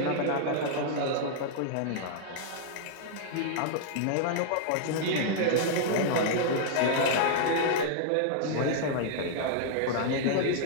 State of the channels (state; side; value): different; both; correlation -0.01